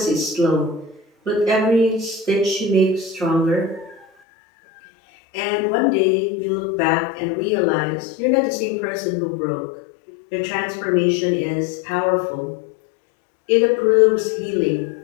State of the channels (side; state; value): right; drops out; at 4.0 s